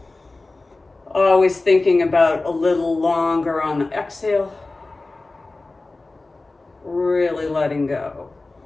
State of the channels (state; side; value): quieter; right; 3.3 dB